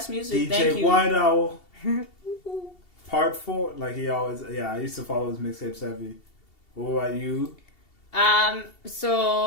music. Thank DJ you. White Owl. Part 4, like he always, I used to follow his mixtapes heavy. What about you?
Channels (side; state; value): right; late; 2.7 ms